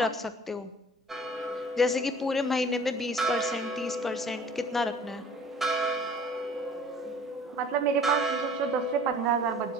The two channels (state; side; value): normal; both; correlation 0.49